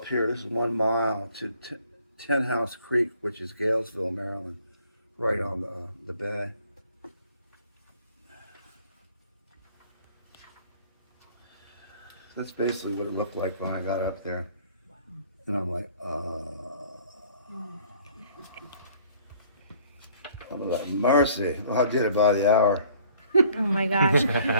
here. This is 1 mile to Ten House Creek, which is Galesville, Maryland, right on the bay. That's basically what it looked like when I got up there. And I'm like, I'm like, mercy. Well, I did it by the hour. Oh my gosh.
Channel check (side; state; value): both; inverted; correlation -0.56